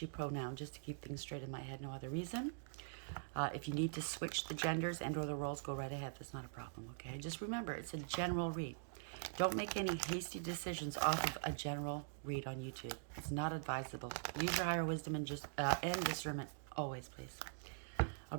pronoun just to keep things straight in my head, no other reason. If you need to switch the genders and or the roles, go right ahead. That's not a problem, okay? Just remember, it's a general read. Don't make any hasty decisions off of a general read on YouTube. It's not advisable. Use your higher wisdom and discernment always, please. I'll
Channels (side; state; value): left; silent; digital silence